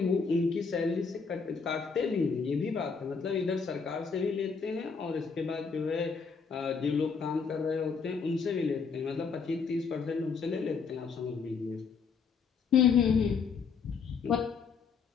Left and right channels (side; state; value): right; quieter; 5.5 dB